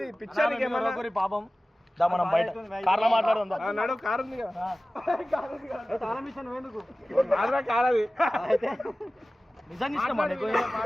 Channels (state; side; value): normal; both; correlation 0.97